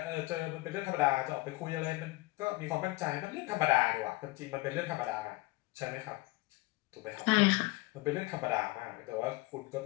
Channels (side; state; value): right; quieter; 21.5 dB